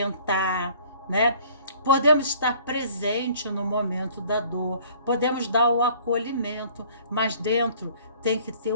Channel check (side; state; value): both; inverted; correlation -0.54